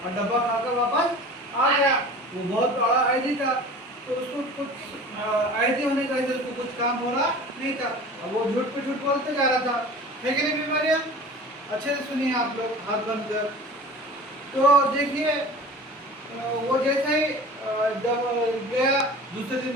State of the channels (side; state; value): both; normal; correlation 0.40